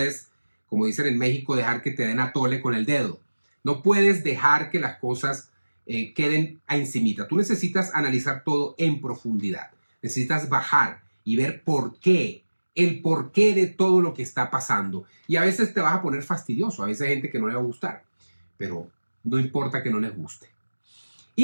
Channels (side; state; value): both; inverted; correlation -1.00